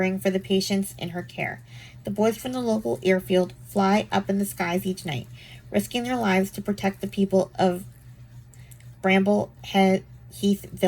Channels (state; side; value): identical; both; correlation 1.00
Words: for the patients in her care. The boys from the local airfield fly up in the skies each night, risking their lives to protect the people of Bramble Heath